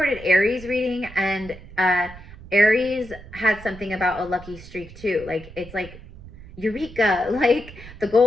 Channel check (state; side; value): noise; right; rumble, 17 dB below the sound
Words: Aries reading, and Aries had something about a lucky streak too. Like it's like Eureka, like the